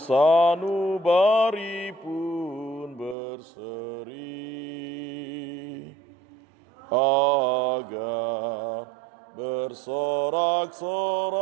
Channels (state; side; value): drops out; left; at 3.2 s